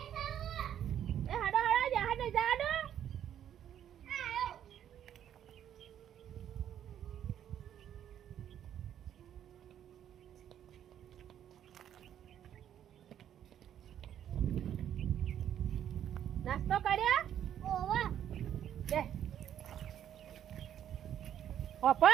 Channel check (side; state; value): left; quieter; 10.2 dB